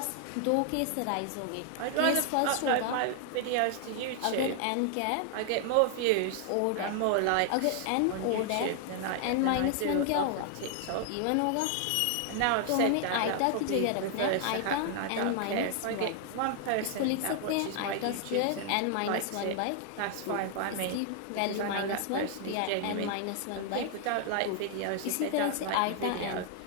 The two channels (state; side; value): different; both; correlation 0.00